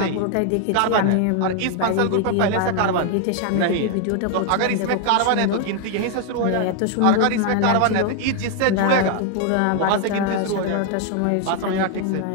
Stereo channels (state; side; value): different; both; correlation 0.01